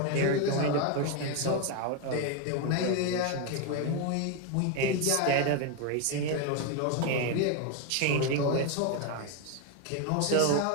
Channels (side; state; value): both; different; correlation 0.02